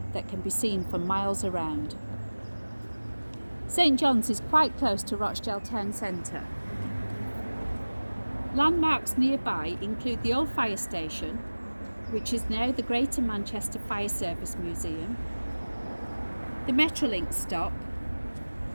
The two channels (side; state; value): both; inverted; correlation -1.00